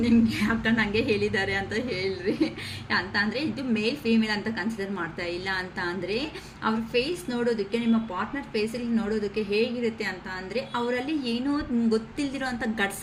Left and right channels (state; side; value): identical; both; correlation 1.00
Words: ನಿಮಗೆ, ಅಕ್ಕ ನನಗೆ ಹೇಳಿದ್ದಾರೆ ಅಂತ ಹೇಳ್ರಿ ಅಂತ ಅಂದರೆ ಇದು ಮೇಲ್ ಫೀಮೇಲ್ ಅಂತ ಕನ್ಸಿಡರ್ ಮಾಡ್ತಾ ಇಲ್ಲ. ಅಂತ ಅಂದರೆ ಅವ್ರ ಫೇಸ್ ನೋಡೋದಕ್ಕೆ, ನಿಮ್ಮ ಪಾರ್ಟ್ನರ್ ಫೇಸಲ್ಲಿ ನೋಡೋದಕ್ಕೆ ಹೇಗಿರುತ್ತೆ ಅಂತ ಅಂದರೆ ಅವರಲ್ಲಿ ಏನೋ ಗೊತ್ತಿಲ್ದಿರೋ ಅಂಥ